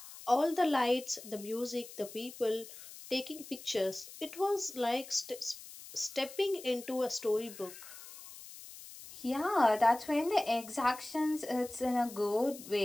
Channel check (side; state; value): left; noise; hiss, 15 dB below the sound